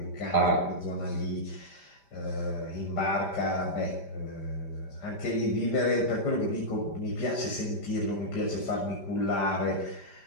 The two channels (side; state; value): right; late; 5.0 ms